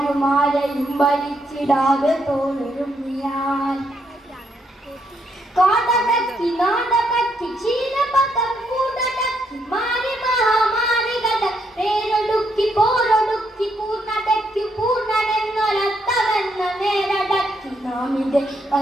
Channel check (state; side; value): normal; both; correlation 0.76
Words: ഭരിച്ചിടാതെ തോളൊരുമ്മിയാൽ കാടടക്കി നാടകത്തി ക്ഷീരപഥം കൂടടക്കി മാറി മഹാമാരികട പേരൊടുക്കി പോരൊടുക്കി പൂർണ്ണടക്കി പൂർണ്ണനെന്നൊരത്തവെന്ന നേരടക്കി നാമിന്റെ